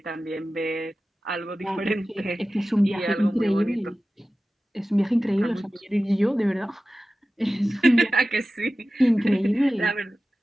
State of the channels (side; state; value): both; normal; correlation 0.95